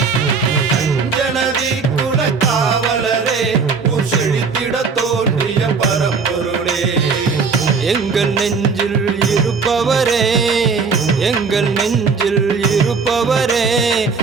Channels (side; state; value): left; quieter; 5.1 dB